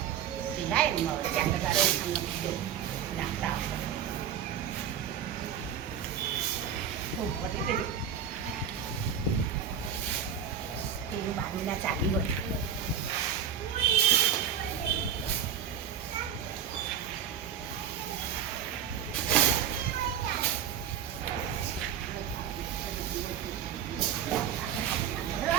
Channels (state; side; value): quieter; left; 8.6 dB